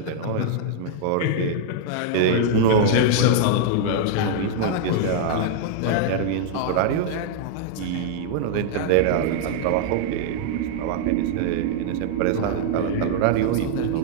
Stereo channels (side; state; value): both; different; correlation -0.01